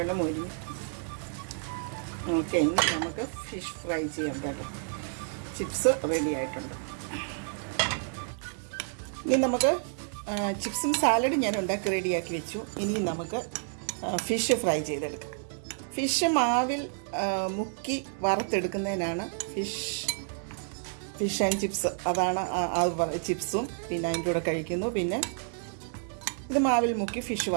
മുരിഞ്ഞു. ഓക്കെ, ഇനി നമുക്ക് ഫിഷ് ഫ്രൈ ചെയ്യാം കേട്ടോ. ചിപ്സ് റെഡി ആയിട്ടുണ്ട്. ഇനി നമുക്ക് ചിപ്സും സാലഡും ഞാൻ ഉണ്ടാക്കി റെഡിയാക്കി വെച്ചു. ഇനി നമുക്ക് ഫിഷ് ഫ്രൈ ചെയ്തെടുക്കാം. ഫിഷ് മാവിൽ മുക്കി വറുത്തെടുക്കുന്നതിനാണ് ഫിഷ് ആൻഡ് ചിപ്സ്. അതാണ് അത് ചിപ്സും പിന്നെ അതിൻ്റെ കൂടെ കഴിക്കുന്നു. പിന്നെ ഇത് മാവിൽ മുക്കി ഫിഷ്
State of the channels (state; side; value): silent; left; digital silence